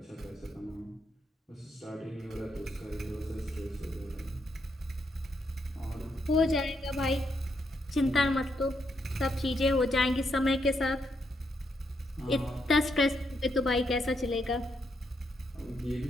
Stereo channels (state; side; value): normal; both; correlation 0.78